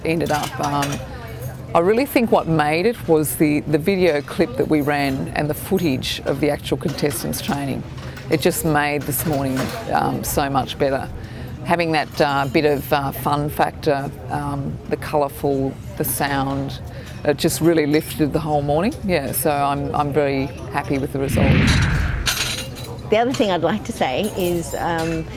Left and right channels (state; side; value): identical; both; correlation 1.00